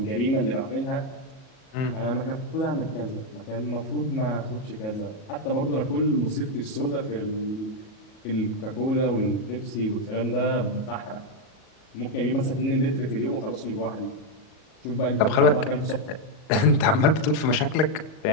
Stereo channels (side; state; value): right; late; 38 ms